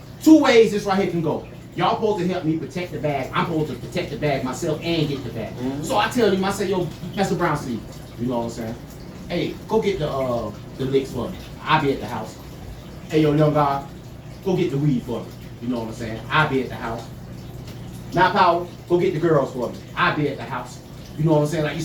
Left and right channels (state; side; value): identical; both; correlation 1.00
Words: two ways this right here can go. Y'all supposed to help me protect the bag. I'm supposed to protect the bag myself and get the bag. Mhm. So I tell him, I say, yo, Mr. Brown, see, you know what I'm saying? Hey, go get the licks for me. I'll be at the house. Hey, yo, young guy, go get the weed for me. You know what I'm saying? I'll be at the house. Now, Power, go get the girls for me. I'll be at the house. You know what I'm saying? Like you